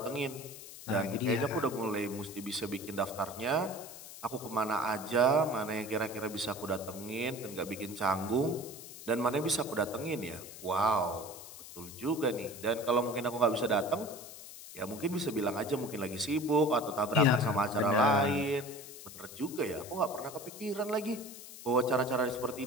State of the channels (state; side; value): noise; left; hiss, 14 dB below the sound